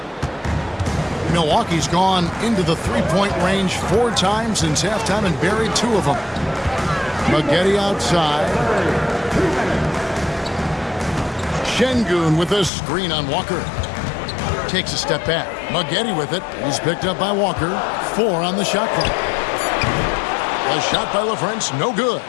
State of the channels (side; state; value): right; drops out; at 12.7 s